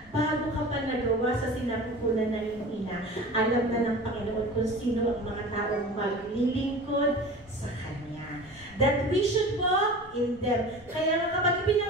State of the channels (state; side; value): noise; left; rumble, 24 dB below the sound